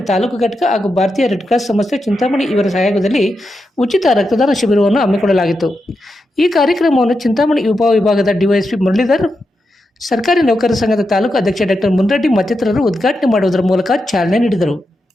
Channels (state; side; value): normal; both; correlation 0.87